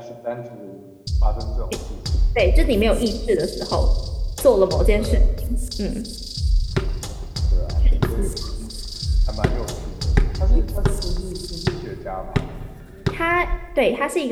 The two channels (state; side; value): identical; both; correlation 1.00